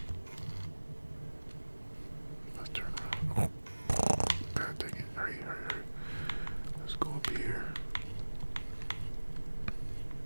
Let's turn around. Oh, God dang it. Hurry. Let's go up here.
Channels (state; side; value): inverted; both; correlation -1.00